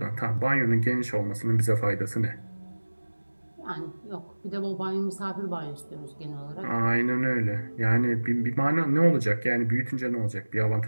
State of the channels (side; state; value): both; inverted; correlation -1.00